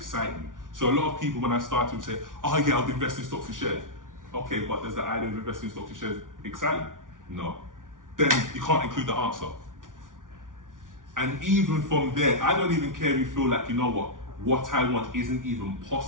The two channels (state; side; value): late; left; 0.88 ms